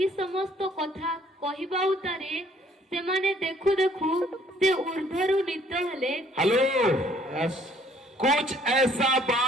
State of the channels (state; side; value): normal; both; correlation 0.61